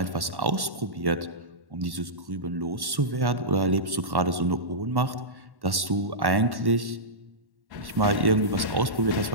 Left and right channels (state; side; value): late; left; 1.1 ms